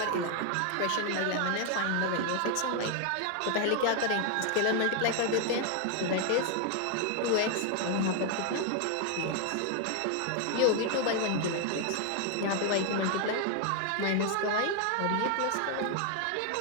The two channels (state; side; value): different; both; correlation 0.00